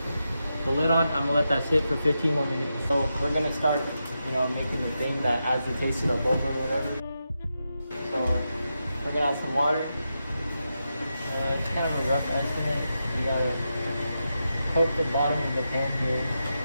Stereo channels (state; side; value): inverted; both; correlation -0.87